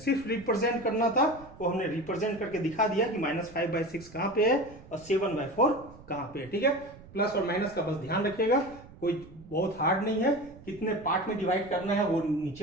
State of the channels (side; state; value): right; noise; rumble, 20 dB below the sound